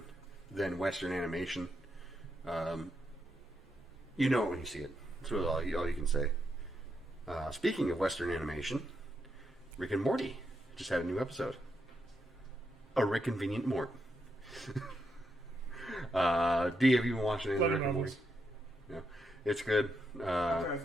than Western animation. You know it when you see it. That's really all you can say. Speaking of Western animation, Rick and Morty just had a new episode. A Rick Convenient Mort. D, have you been watching any of Rick and Morty? Yeah, it's good. I've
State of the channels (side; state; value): both; normal; correlation 0.82